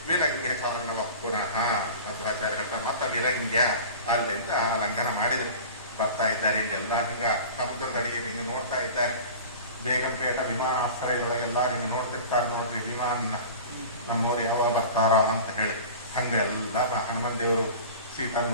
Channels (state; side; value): inverted; both; correlation -0.37